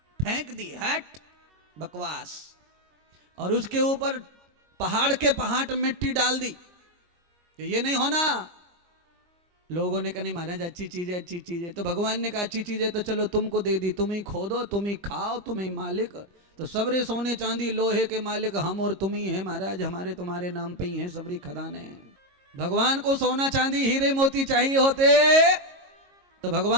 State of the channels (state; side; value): late; left; 22 ms